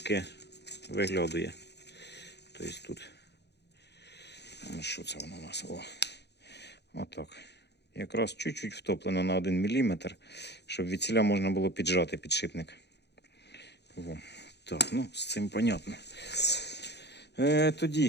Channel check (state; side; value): late; right; 0.49 ms